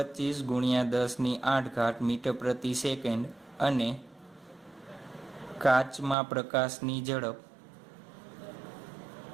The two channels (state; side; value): drops out; left; at 6.2 s